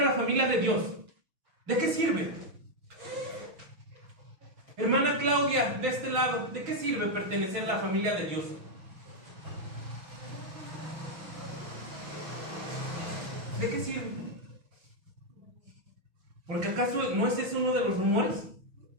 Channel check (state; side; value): late; left; 6.1 ms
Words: a la familia de Dios? ¿De qué sirve? Hermana Claudia, de este lado, ¿de qué sirve pertenecer a la familia de Dios? ¿De qué sirve? Porque ¿acaso no es ese uno de los rumores?